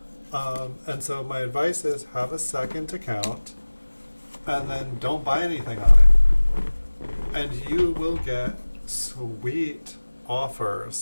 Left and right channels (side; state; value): both; inverted; correlation -1.00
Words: And so my advice is, have a second account and then don't buy anything on it. And you will get sweet